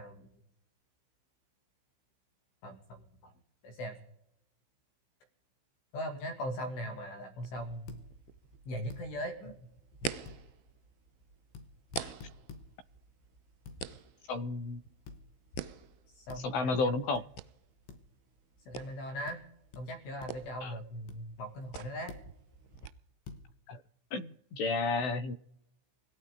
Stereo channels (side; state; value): right; late; 16 ms